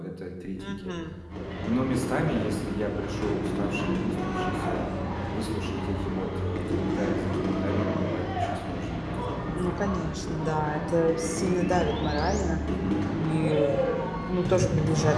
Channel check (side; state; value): both; identical; correlation 1.00